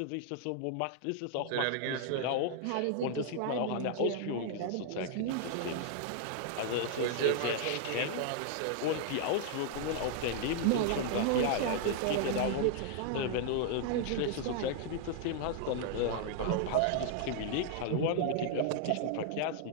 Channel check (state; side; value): different; both; correlation 0.00